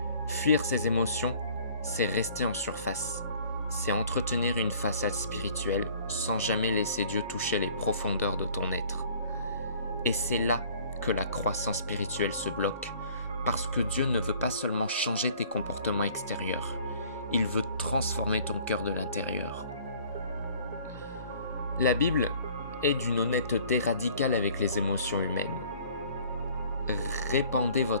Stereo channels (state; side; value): inverted; both; correlation -0.53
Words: Fuir ces émotions, c'est rester en surface. C'est entretenir une façade spirituelle sans jamais laisser Dieu toucher les profondeurs de ton être. Et c'est là que la croissance spirituelle se bloque, parce que Dieu ne veut pas seulement changer tes comportements extérieurs, il veut transformer ton cœur de l'intérieur. La Bible est d'une honnêteté radicale avec les émotions humaines. Répandez